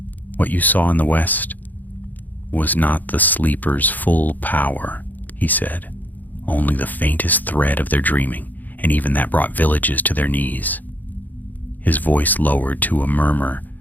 "What you saw in the west was not the sleeper's full power," he said, "only the faintest thread of their dreaming, and even that brought villages to their knees." His voice lowered to a murmur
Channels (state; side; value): late; right; 0.084 ms